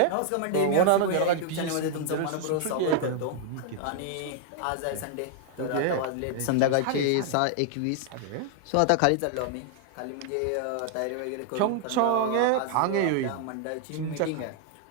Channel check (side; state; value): both; different; correlation -0.01